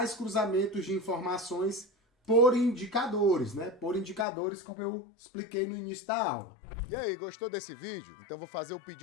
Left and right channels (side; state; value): right; drops out; at 4.2 s